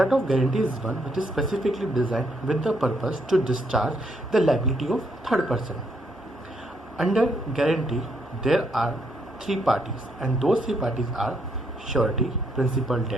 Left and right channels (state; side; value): normal; both; correlation 0.74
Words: of guarantee is one which is specifically designed with the purpose to discharge the liability of third person. Under guarantee, there are three parties and those three parties are surety, principal